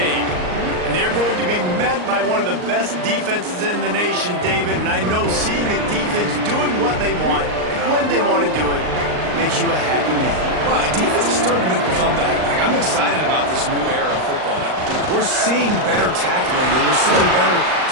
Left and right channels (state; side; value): late; left; 39 ms